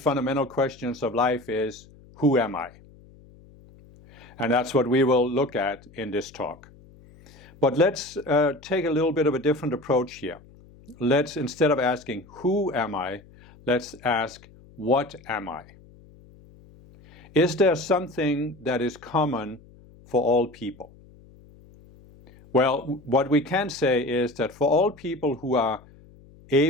questions of life is, who am I? And that's what we will look at in this talk. But let's take a little bit of a different approach here. Let's, instead of asking, who am I, let's ask, what am I? Is there something that is common for all people? Well, what we can say is that for all people who are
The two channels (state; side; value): noise; left; hum, 24 dB below the sound